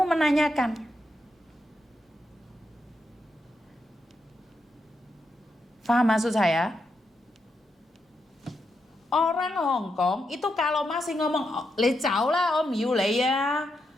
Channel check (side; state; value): both; normal; correlation 0.83